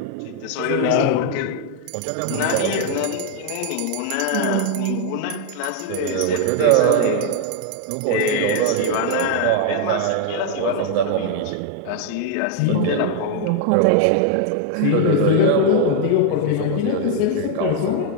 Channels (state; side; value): different; both; correlation 0.00